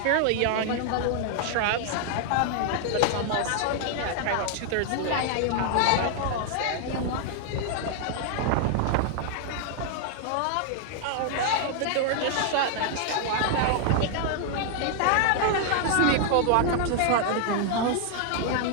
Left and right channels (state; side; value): different; both; correlation 0.00